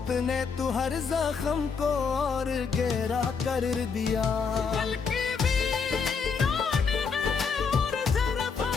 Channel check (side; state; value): right; quieter; 5.6 dB